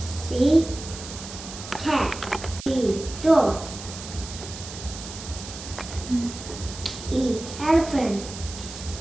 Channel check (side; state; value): right; noise; hiss, 12 dB below the sound